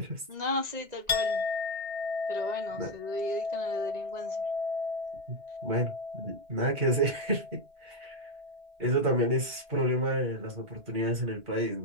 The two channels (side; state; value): left; late; 2.2 ms